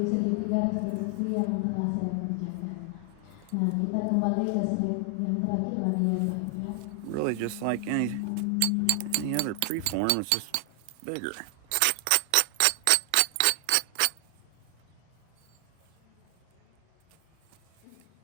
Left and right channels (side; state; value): both; different; correlation 0.00